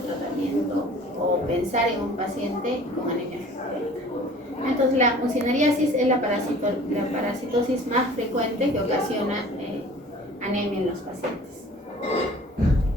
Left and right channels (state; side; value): normal; both; correlation 0.47